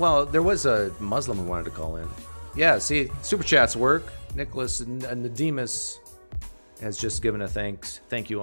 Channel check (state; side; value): inverted; both; correlation -1.00